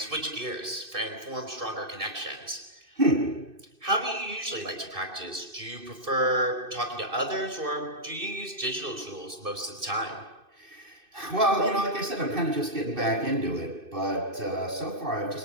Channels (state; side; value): late; left; 2.6 ms